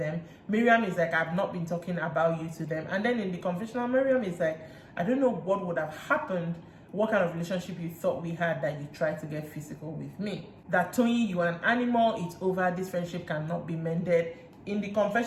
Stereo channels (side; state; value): both; identical; correlation 1.00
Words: Miriam is like, I've not been talking about you to them. And then in the confessional, Miriam is like, I don't know what would have happened, what kind of relationship you thought we had, that you tried to get physical with me. That Tony, you are an animal, it's over, this friendship cannot be mended. In the